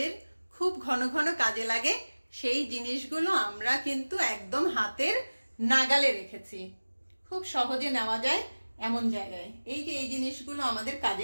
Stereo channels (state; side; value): inverted; both; correlation -1.00